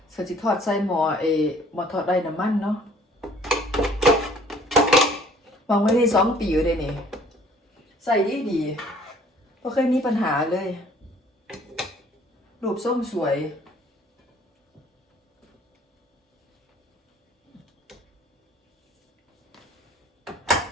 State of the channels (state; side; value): normal; both; correlation 0.56